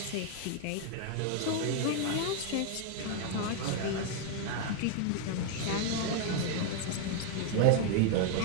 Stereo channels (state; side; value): different; both; correlation 0.01